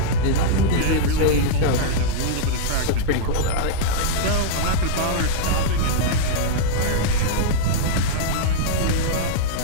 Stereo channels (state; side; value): different; both; correlation -0.02